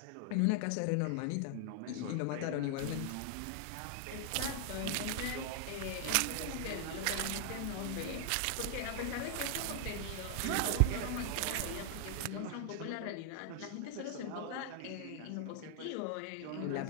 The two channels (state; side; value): different; both; correlation 0.00